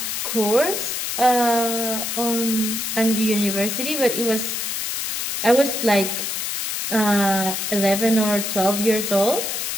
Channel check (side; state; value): left; noise; hiss, 2 dB below the sound